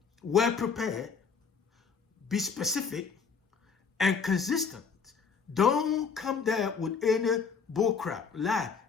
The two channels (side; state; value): right; quieter; 5.8 dB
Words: well prepared, be specific and consistent. Don't come there with any bullcrap, lie.